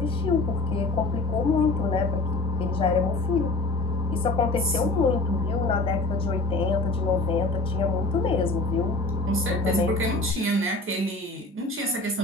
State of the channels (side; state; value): right; quieter; 3.1 dB